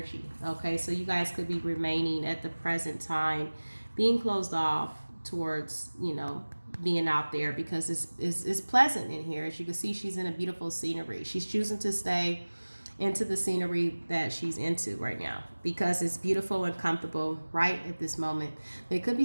Okay, so you guys could be remaining at the present time, being closed off towards, you know, being out there, because it's pleasant in here. As you can see, she's in a beautiful scenery. She's choosing to stay into the scenery that she's into right now, because it's beautiful and comfortable right at this moment. There could be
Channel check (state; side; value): inverted; both; correlation -1.00